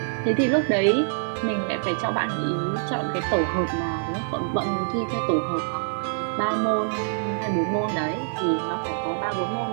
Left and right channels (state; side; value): silent; left; digital silence